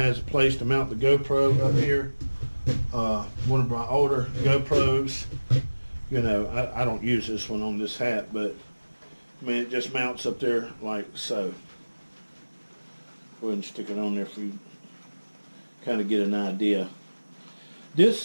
a place to mount the GoPro up here. One of my older GoPros, I don't use this one on this hat, but I mean, it just mounts up there like so. Go ahead and stick it on there for you kind of get an idea.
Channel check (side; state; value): both; inverted; correlation -1.00